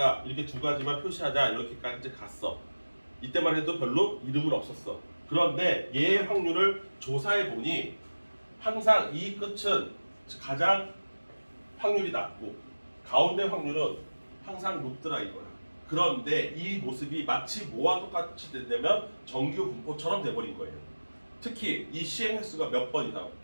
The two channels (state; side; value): inverted; both; correlation -1.00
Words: 이렇게 두 가지만 표시하자, 이렇게까지 갔어. 이때만 해도 별로 이름은 없었어. 그런데 얘의 확률을 조사해 보니 항상 이 끝은 가장 확률이 낮고 가운데 확률은 항상 높더라 이거야. 그런데 이 모습이 마치 뭐와 똑같이 되면 정규 분포처럼 돼버린 거예요. 특히 이 시행 횟수가 몇 번 이상